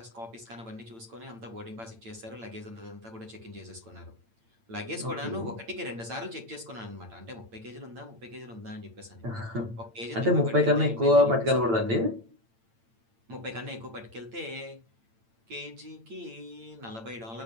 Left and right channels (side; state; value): left; late; 8.8 ms